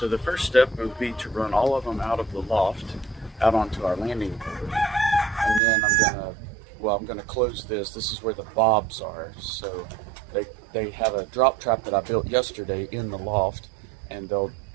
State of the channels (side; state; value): left; drops out; at 5.6 s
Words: the first step would be to run all of them out of the loft out onto our landing board. And then I'm gonna close this. This is where the bobs are. So they have a drop trap that I built yesterday in the loft, and they'll